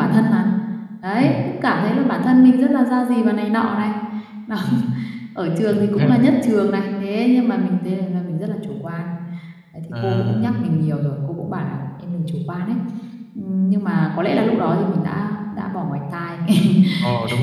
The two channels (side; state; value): both; identical; correlation 1.00